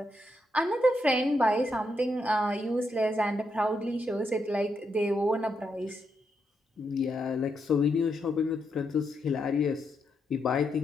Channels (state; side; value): normal; both; correlation 0.81